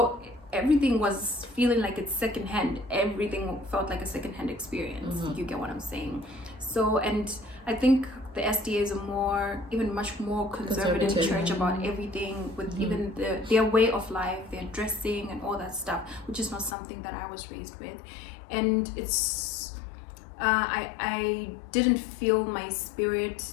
everything was feeling like it's secondhand. Everything felt like a secondhand experience. You get what I'm saying? So, and I think the SDA is even much more conservative church about everything, with even their way of life, their dressing and all that stuff, which is not something that I was raised with. And it's I didn't feel in my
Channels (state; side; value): drops out; right; at 16.8 s